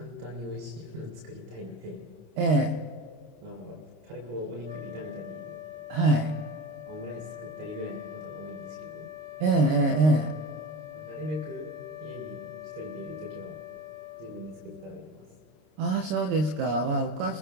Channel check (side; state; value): left; late; 26 ms